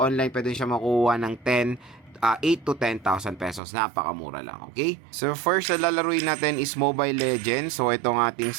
pwede siya makuha ng 8 to 10,000 pesos. Napakamura lang, okay? So first na lalaruin natin is Mobile Legends. So itong ating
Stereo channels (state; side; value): drops out; left; at 3.6 s